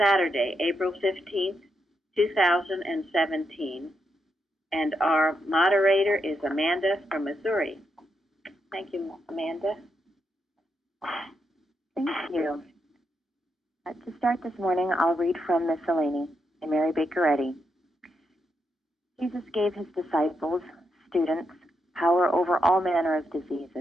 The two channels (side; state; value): both; normal; correlation 0.82